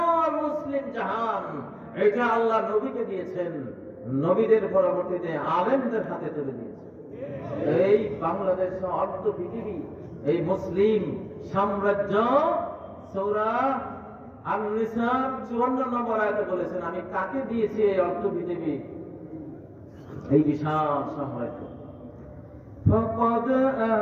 মুসলিম জাহান, এটা আল্লাহ নবীকে দিয়েছেন, নবীদের পরবর্তীতে আলেমদের হাতে তুলে দিয়েছেন। এই বাংলাদেশ অর্ধ পৃথিবী, এই মুসলিম সাম্রাজ্য, সূরা আন-নিসা 54 নম্বর আয়াতে বলেছেন, আমি কাকে দিয়েছি এই অর্ধ পৃথিবী, এই বিশাল সাম্রাজ্য। فقد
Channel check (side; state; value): both; identical; correlation 1.00